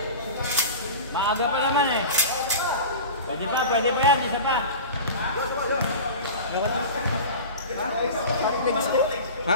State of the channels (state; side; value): inverted; both; correlation -0.33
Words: Maaga pa naman eh. Pwede pa yan, isa pa. Ha?